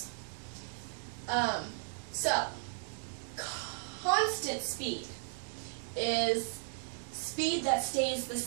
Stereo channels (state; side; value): silent; left; 54 dB below the other